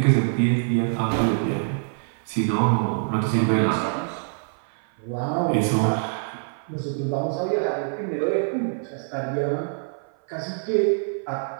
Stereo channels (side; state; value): left; silent; 56 dB below the other